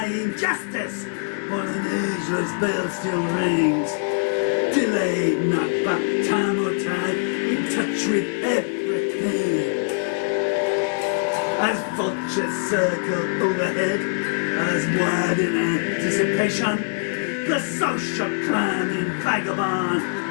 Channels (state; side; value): silent; right; digital silence